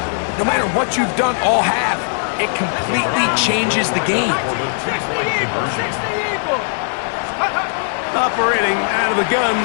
No matter what you've done all half, it completely changes the game. Operating out of the gun,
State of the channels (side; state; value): right; silent; digital silence